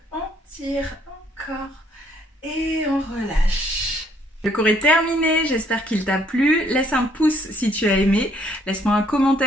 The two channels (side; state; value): both; normal; correlation 0.65